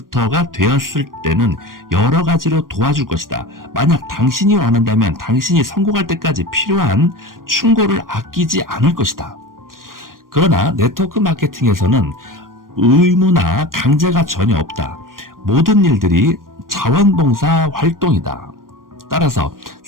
되었을 때는 여러 가지로 도와줄 것이다. 만약 당신이 원한다면 당신이 성공할 때까지 필요한 충고를 아끼지 않을 것이다. 그러나 네트워크 마케팅에서는 의무나 강제가 전혀 없다. 모든 일들이 자원봉사 활동이다. 따라서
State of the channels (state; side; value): late; left; 0.91 ms